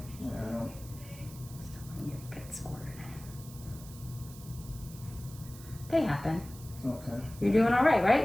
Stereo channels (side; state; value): right; noise; hiss, 18 dB below the sound